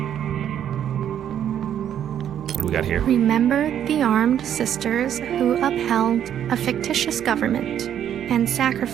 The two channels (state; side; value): quieter; left; 9.9 dB